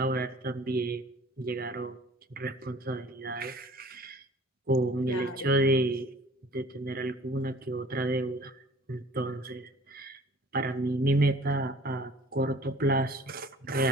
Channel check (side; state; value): both; normal; correlation 0.50